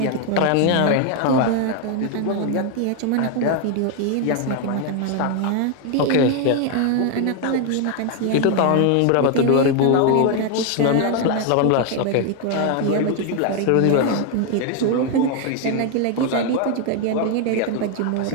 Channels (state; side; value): different; both; correlation 0.01